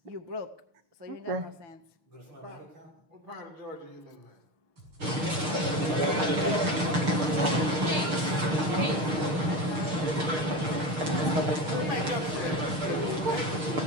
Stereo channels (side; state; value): left; late; 6.5 ms